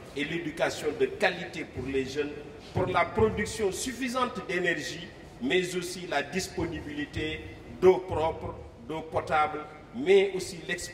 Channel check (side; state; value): both; identical; correlation 1.00